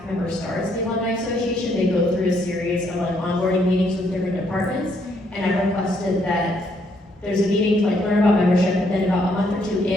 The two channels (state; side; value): normal; both; correlation 0.71